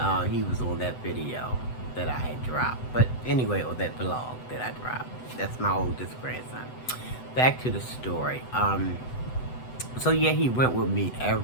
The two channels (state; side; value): late; right; 8.0 ms